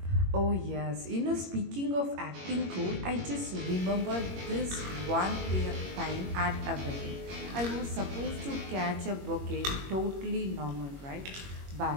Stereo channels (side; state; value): left; late; 21 ms